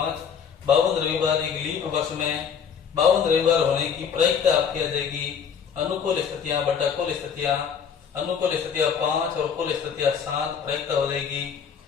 52 रविवार एक लीप वर्ष में 52 रविवार होने की प्रायिकता आपकी आ जाएगी। अनुकूल स्थितियां बटा कुल स्थितियां, अनुकूल स्थितियां 5 और कुल स्थितियां 7, प्रायिकता हो जाएगी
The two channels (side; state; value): right; quieter; 7.1 dB